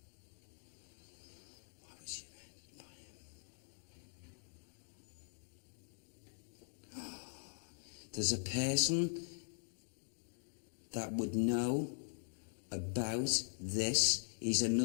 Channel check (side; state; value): right; silent; digital silence